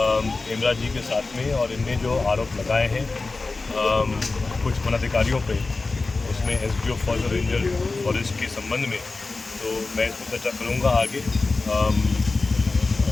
हेमराज जी के साथ में और इनने जो आरोप लगाए हैं कुछ वनाधिकारियों पे उसमें एसडीओ फॉरेस्ट रेंजर फॉरेस्ट के संबंध में, तो मैं इसमें चर्चा करूँगा आगे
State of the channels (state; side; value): quieter; right; 3.7 dB